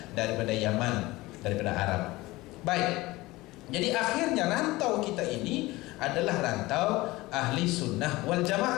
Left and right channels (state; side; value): quieter; right; 20.0 dB